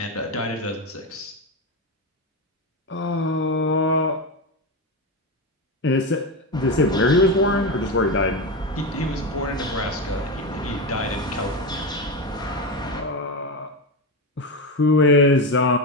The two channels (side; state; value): both; normal; correlation 0.15